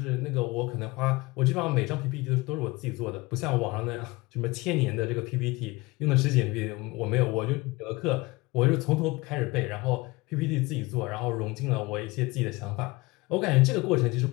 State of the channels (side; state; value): right; quieter; 23.0 dB